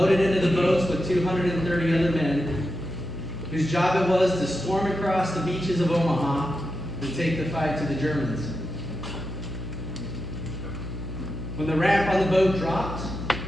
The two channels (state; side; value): noise; left; hum, 6 dB below the sound